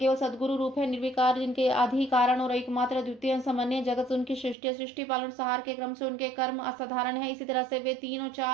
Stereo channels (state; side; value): drops out; left; at 4.5 s